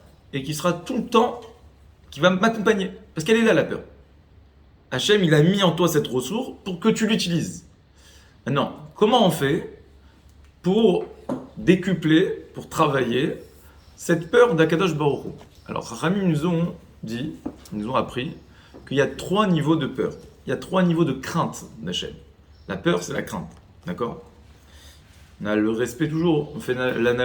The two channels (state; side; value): identical; both; correlation 1.00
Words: et qui sera tout le temps, qui va m'accompagner. Parce qu'elle est là, la peur. Hachem, il a mis en toi cette ressource pour que tu l'utilises. Maintenant, comment on fait pour décupler, pour travailler cette peur d'Akadosh Baruch Hu ? Alors, Rami nous ont appris qu'il y a 3 niveaux de peur. Il y a 3 niveaux de crainte d'Hachem. La peur, c'est la crainte. D'accord ? On a le respect toujours, on fait